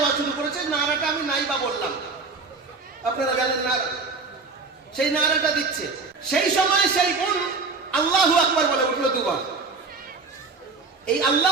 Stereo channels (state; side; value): quieter; left; 4.2 dB